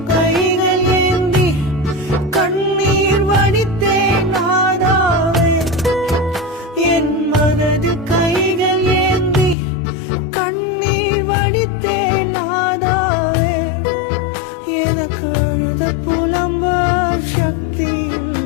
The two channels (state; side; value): drops out; right; at 9.6 s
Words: கைகள் ஏந்தி கண்ணீர் வடித்தேன் நாதாவே என் மனது கைகள் ஏந்தி கண்ணீர் வடித்தேன் நாதாவே எனக்கு அழுத புலம்ப சக்தி